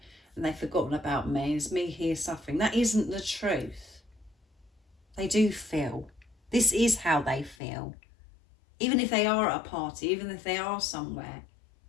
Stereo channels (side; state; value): right; drops out; at 7.6 s